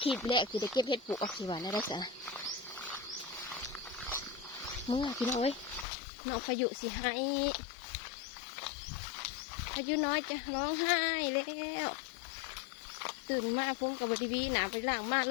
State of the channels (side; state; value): right; drops out; at 5.9 s